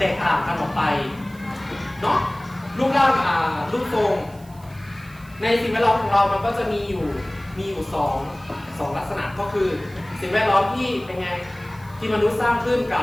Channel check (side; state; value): right; noise; hiss, 25 dB below the sound